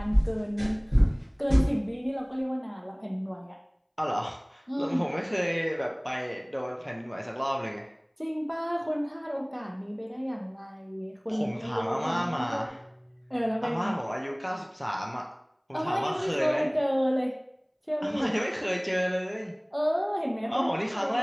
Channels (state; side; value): identical; both; correlation 1.00